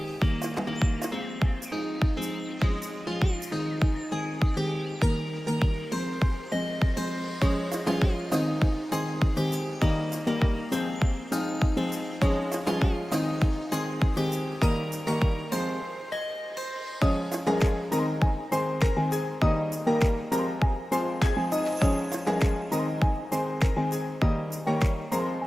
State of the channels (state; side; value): normal; both; correlation 0.96